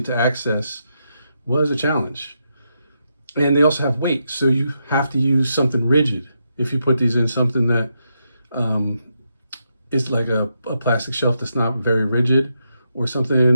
to access was a challenge. And they also have weight, so you have to use something rigid if you put these in something that is like a plastic shelf that's not very rigid, or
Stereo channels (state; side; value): inverted; both; correlation -0.83